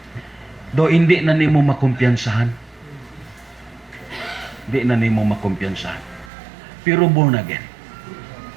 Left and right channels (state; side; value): drops out; left; at 6.3 s